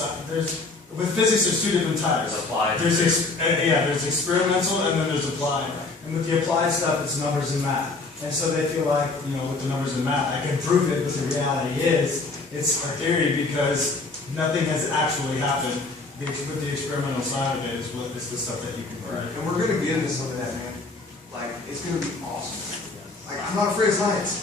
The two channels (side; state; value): right; quieter; 3.6 dB